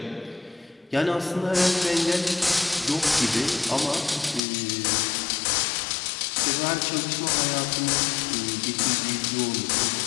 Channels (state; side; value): drops out; right; at 4.4 s